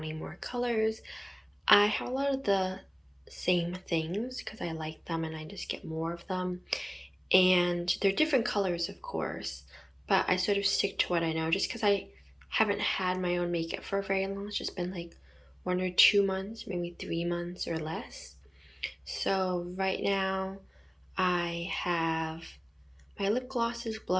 more colors. I have a lot of the same things because I like them and I just get more of them. And they're different colors, of course, but I sort of stick to what I know just because I haven't had my own makeup for very long. It's just been like 1 or 2 months, maybe 3 months or less. So right now I have my lip glosses,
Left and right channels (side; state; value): both; identical; correlation 1.00